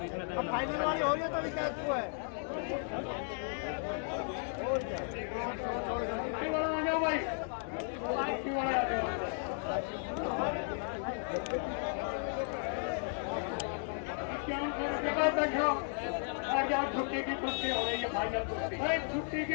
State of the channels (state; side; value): silent; right; 55 dB below the other